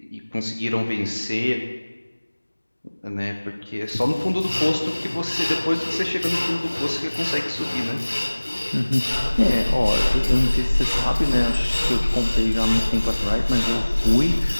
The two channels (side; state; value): both; inverted; correlation -1.00